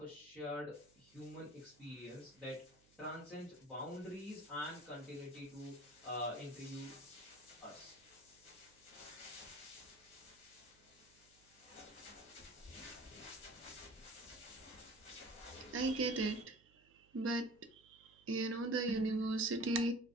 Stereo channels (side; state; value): right; noise; hum, 28 dB below the sound